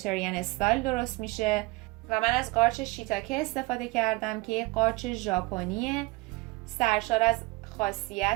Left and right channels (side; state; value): left; quieter; 23.3 dB